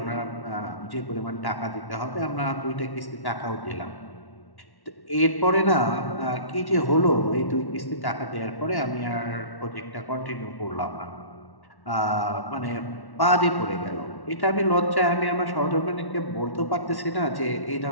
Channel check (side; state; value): right; late; 1.1 ms